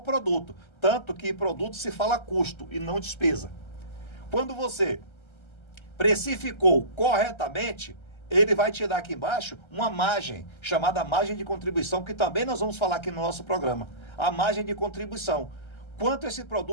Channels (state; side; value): late; right; 1.3 ms